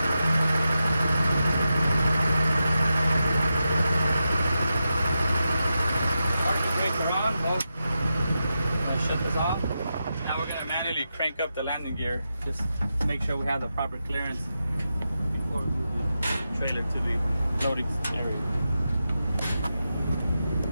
Parking brakes are on. I'll shut this off. Now we're gonna manually crank up the landing gear just to make sure we have the proper clearance before we move the trailer to the loading area.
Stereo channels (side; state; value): both; inverted; correlation -0.89